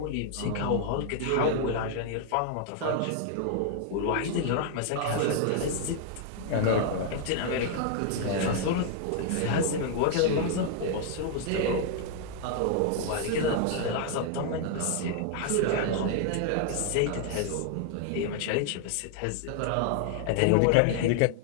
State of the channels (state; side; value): different; both; correlation 0.00